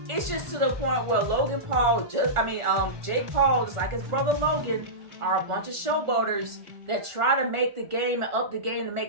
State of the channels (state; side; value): late; left; 1.4 ms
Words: It's just to the point where Logan Paul, Jake Paul, just like his brother Logan, are a bunch of showboaters that try to make the game and up the game to